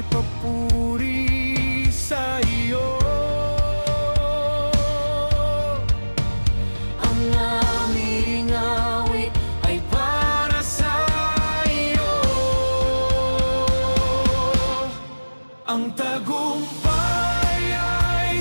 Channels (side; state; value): both; inverted; correlation -1.00